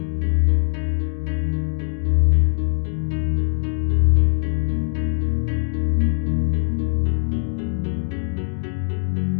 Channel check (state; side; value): silent; right; digital silence